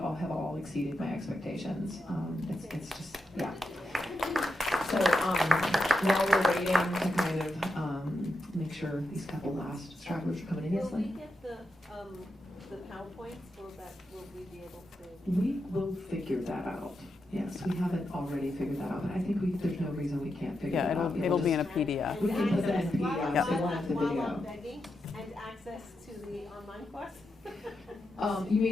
have exceeded my expectations. It's just, yeah. So while we're waiting to kind of make sure these couple last stragglers are coming in, yes, Will we get the PowerPoints? Will we be able to? we will figure that out. Yes, we haven't already figured that out, but I think there's no reason we can't figure that out. It'll be in a PDF. We can put that in a PDF, Yep. so we'll have the video. And access to the online course? You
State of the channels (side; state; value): both; normal; correlation 0.86